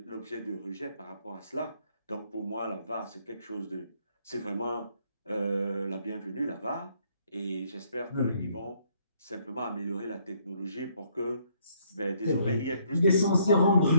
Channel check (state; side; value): inverted; both; correlation -0.68